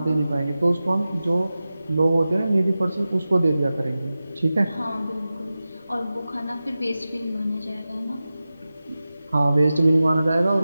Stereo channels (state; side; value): inverted; both; correlation -0.95